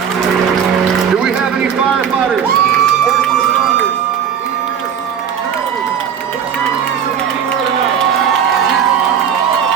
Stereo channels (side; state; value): left; quieter; 8.1 dB